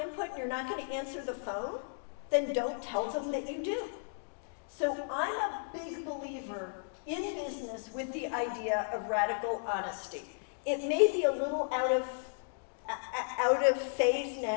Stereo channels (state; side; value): silent; right; digital silence